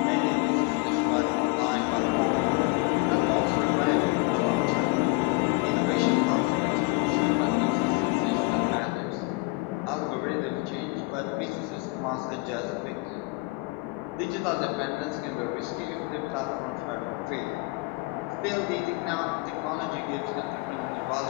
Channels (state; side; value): quieter; right; 26.2 dB